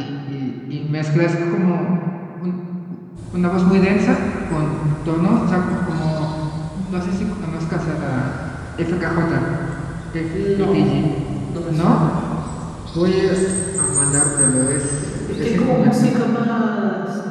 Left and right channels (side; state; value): both; identical; correlation 1.00